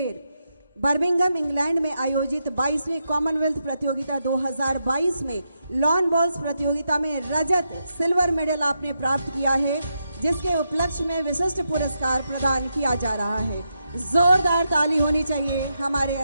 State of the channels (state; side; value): inverted; both; correlation -0.84